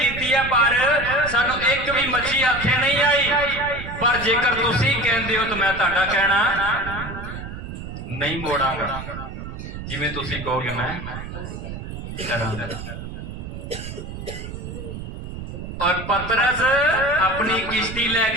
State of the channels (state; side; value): noise; right; rumble, 9 dB below the sound